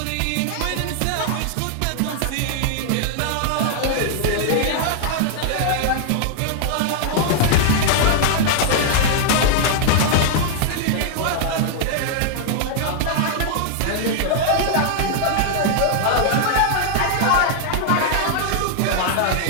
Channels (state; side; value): different; both; correlation 0.00